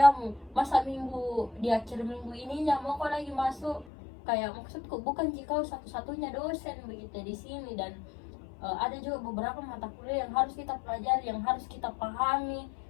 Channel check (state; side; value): drops out; right; at 3.9 s